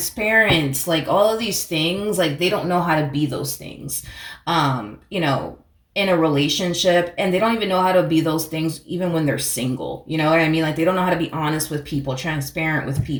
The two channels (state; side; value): identical; both; correlation 1.00